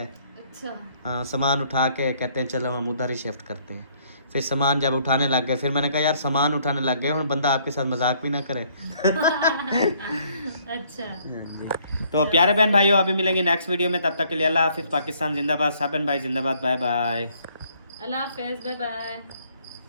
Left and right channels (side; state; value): both; inverted; correlation -0.65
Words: अच्छा। हाँ, सामान उठा के कहते हैं चलो हम उधर ही शिफ्ट करते हैं। फिर सामान जब उठाने लग गए, फिर मैंने कहा यार सामान उठाने लग गए, और बंदा आपके साथ मजाक भी ना करे। अच्छा। तो प्यारे बहन भाइयों, अभी मिलेंगे नेक्स्ट वीडियो में, तब तक के लिए अल्लाह हाफिज़, पाकिस्तान जिंदाबाद, साबन भाई जिंदाबाद, बाय बाय। अल्लाह हाफिज़, बाय बाय।